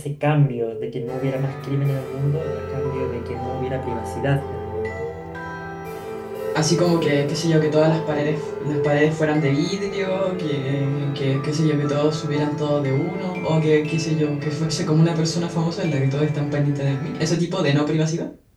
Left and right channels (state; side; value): identical; both; correlation 1.00